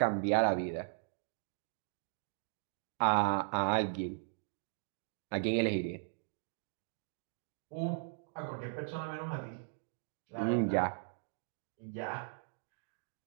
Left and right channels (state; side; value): silent; left; digital silence